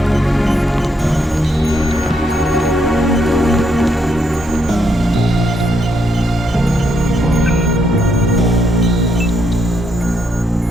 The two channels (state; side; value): normal; both; correlation 0.76